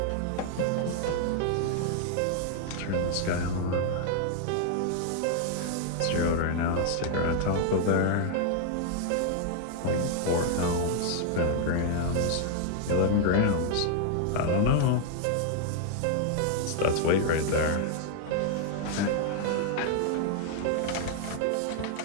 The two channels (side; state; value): both; different; correlation 0.00